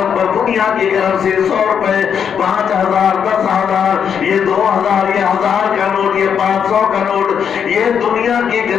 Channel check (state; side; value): quieter; right; 7.7 dB